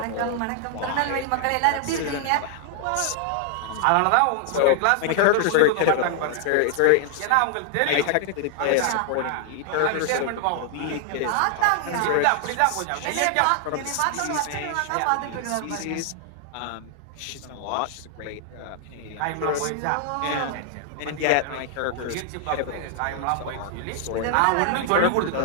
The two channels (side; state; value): both; different; correlation 0.00